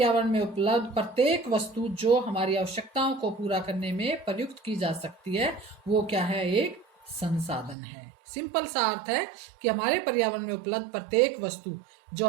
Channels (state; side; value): drops out; left; at 7.8 s